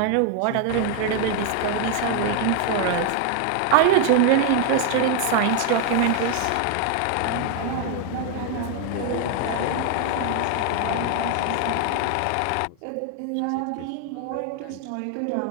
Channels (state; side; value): different; both; correlation 0.00